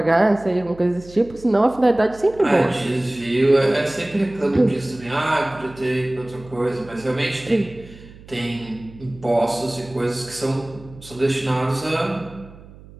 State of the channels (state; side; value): noise; right; hum, 20 dB below the sound